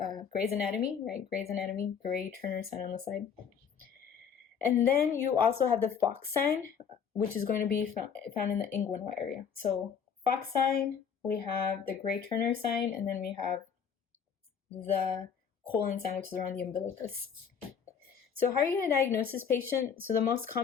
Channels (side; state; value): right; quieter; 7.1 dB